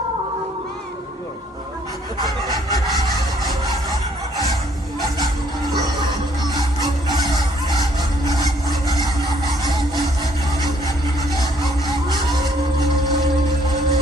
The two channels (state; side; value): normal; both; correlation 0.64